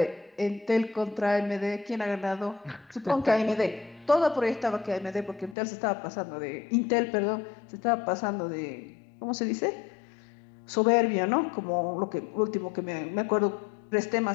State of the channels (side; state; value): right; drops out; at 5.6 s